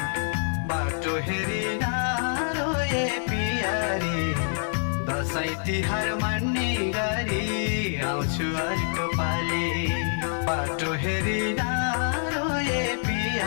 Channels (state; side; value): silent; right; 61 dB below the other